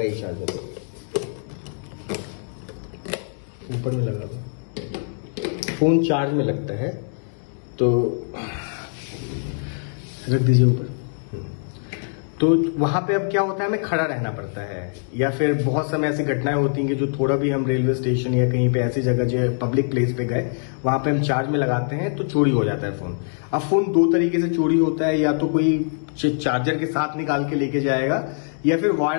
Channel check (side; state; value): right; silent; digital silence